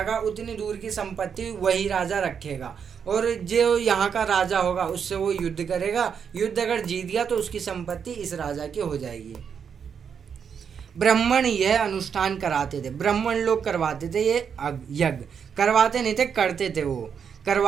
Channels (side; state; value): left; quieter; 7.1 dB